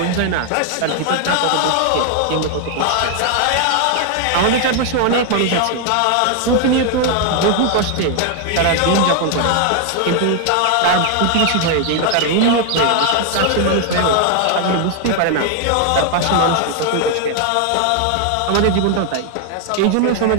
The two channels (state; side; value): different; both; correlation 0.00